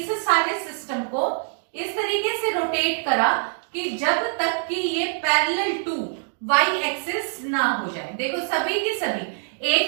सारे सिस्टम को इस तरीके से रोटेट करा कि जब तक कि ये पैरेलल टू y एक्सिस ना हो जाए। देखो सभी की सभी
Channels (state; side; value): silent; left; digital silence